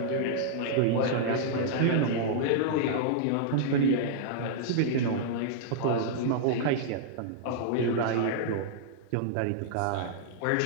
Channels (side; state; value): both; different; correlation -0.02